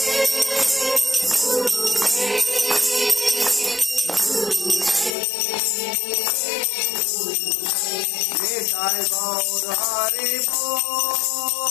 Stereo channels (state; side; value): drops out; right; at 5.2 s